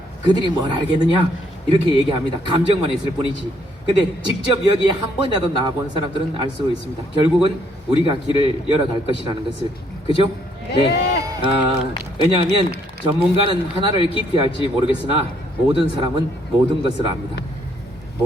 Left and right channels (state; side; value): normal; both; correlation 0.69